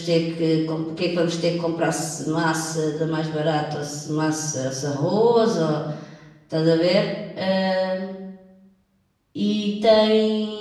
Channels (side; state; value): both; identical; correlation 1.00